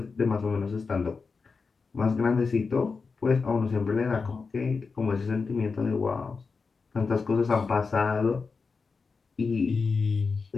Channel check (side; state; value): right; quieter; 4.7 dB